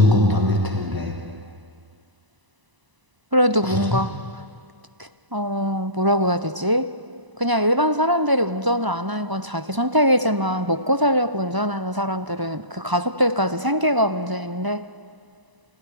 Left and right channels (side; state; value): left; late; 1.0 ms